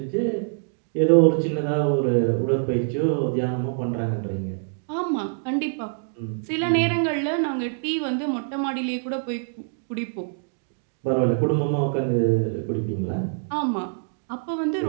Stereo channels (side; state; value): left; silent; digital silence